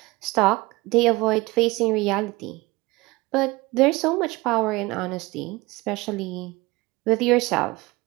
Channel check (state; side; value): quieter; left; 22.1 dB